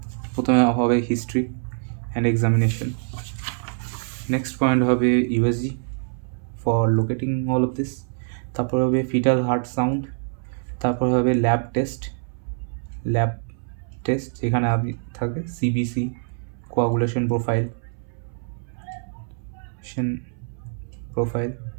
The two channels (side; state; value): left; silent; 62 dB below the other